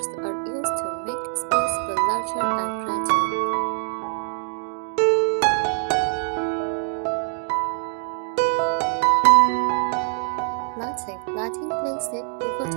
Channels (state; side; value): silent; left; digital silence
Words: are used to make space feel larger and brighter. Lighting plays a